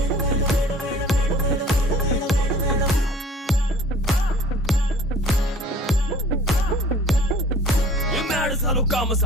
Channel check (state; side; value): normal; both; correlation 0.49